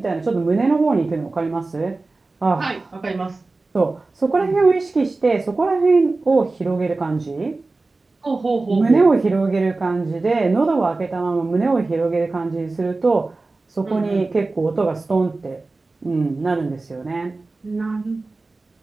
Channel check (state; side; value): quieter; left; 3.5 dB